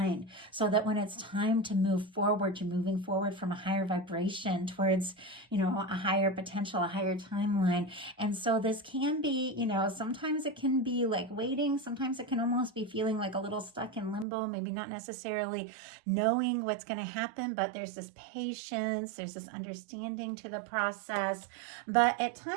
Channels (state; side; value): drops out; left; at 14.2 s